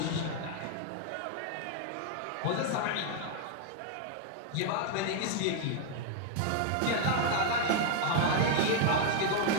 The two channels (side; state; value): both; different; correlation 0.00